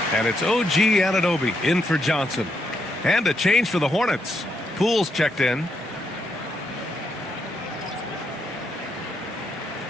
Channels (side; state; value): both; normal; correlation 0.79